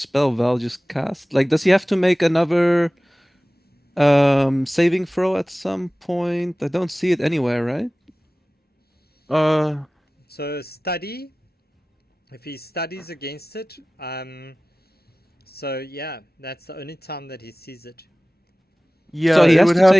Val just cast. Like, does he have to make another saving throw at some point? I don't see it anywhere, right? So study. If he studies against it, so yeah, that's the only time that he sees it. Yeah, So he it has would to have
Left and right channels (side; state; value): both; normal; correlation 0.98